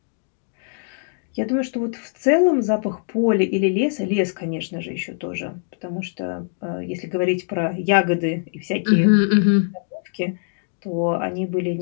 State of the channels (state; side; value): silent; right; digital silence